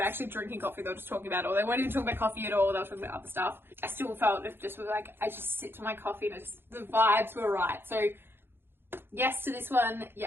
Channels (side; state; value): left; late; 0.11 ms